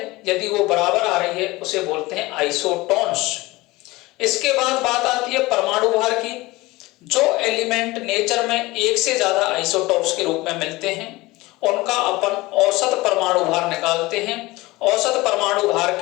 यदि वो बराबर आ रही है उसे बोलते हैं आइसोटोन्स। इसके बाद बात आती है परमाणु भार की। जो एलिमेंट नेचर में एक से ज्यादा आइसोटोप्स के रूप में मिलते हैं उनका अपन औसत परमाणु भार निकालते हैं। औसत परमाणु भार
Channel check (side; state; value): right; quieter; 20.8 dB